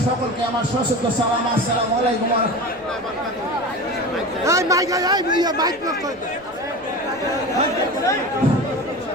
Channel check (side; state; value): right; noise; rumble, 29 dB below the sound